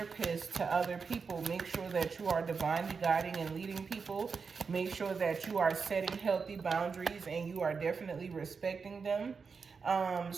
to other people, make sure that you are divinely guiding and leading people. Make sure that you are setting healthy boundaries and you are definitely respecting them.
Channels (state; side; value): quieter; left; 5.3 dB